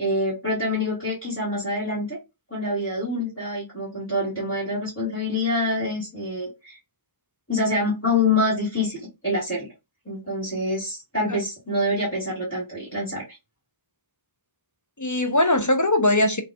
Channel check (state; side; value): inverted; both; correlation -0.31